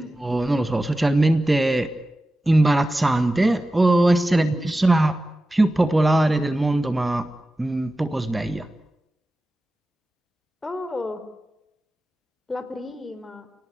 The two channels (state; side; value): normal; both; correlation 0.94